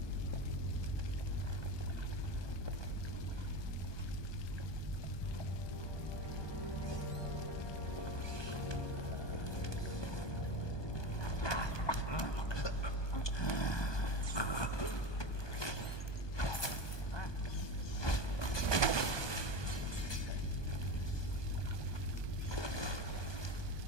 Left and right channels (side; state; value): right; late; 1.2 ms